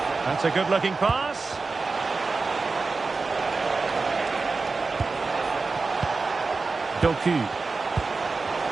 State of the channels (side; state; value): left; quieter; 4.0 dB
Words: That's a good-looking pass. Doku.